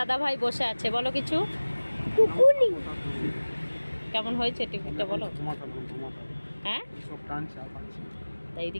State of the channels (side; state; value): both; inverted; correlation -1.00